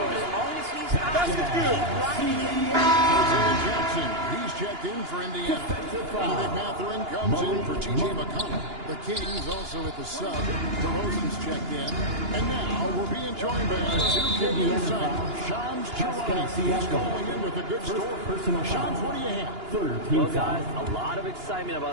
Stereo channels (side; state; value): left; late; 2.9 ms